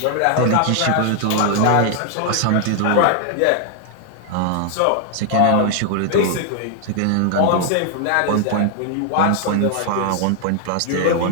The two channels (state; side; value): different; both; correlation 0.00